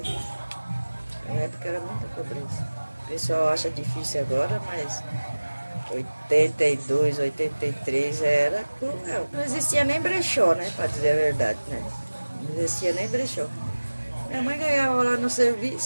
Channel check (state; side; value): inverted; both; correlation -1.00